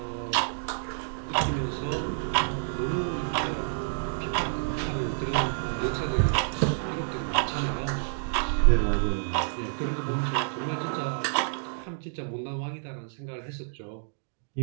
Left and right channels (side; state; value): left; silent; digital silence